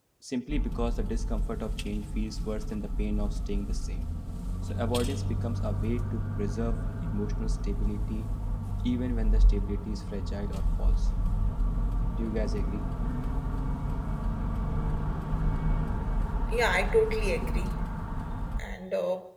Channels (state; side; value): identical; both; correlation 1.00